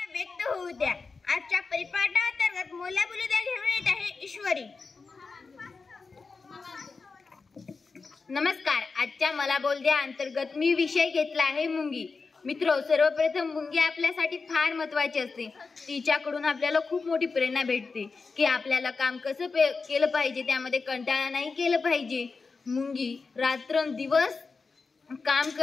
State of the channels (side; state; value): right; quieter; 4.4 dB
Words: व्यक्त होऊ द्या। आजच्या परिपाठांतर्गत मोला बोलू द्या घेऊन येत आहे ईश्वरी। नमस्कार, आजच्या मला बोल द्या अंतर्गत मी विषय घेतला आहे मुंगी। मित्रो, सर्वप्रथम मुंगी आपल्यासाठी फार महत्त्वाची असते। तिच्याकडून आपल्याला खूप मोठी प्रेरणा भेटते की आपल्याला काम कसं केलं पाहिजे, त्यामध्ये कंटाळा नाही केलं पाहिजे। मुंगी रात्रंदिवस काम